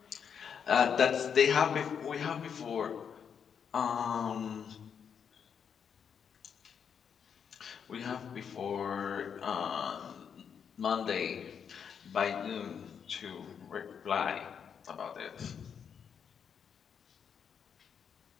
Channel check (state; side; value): quieter; right; 7.3 dB